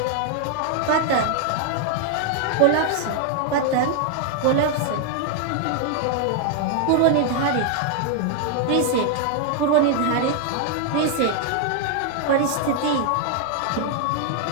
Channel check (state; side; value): different; both; correlation 0.00